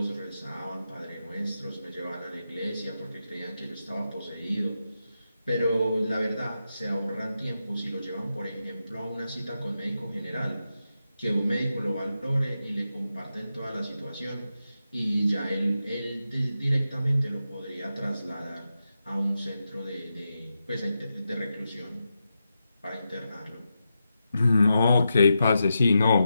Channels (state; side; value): inverted; both; correlation -0.88